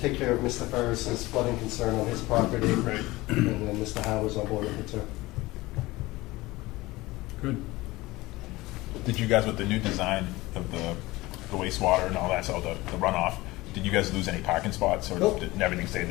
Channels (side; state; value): right; quieter; 20.0 dB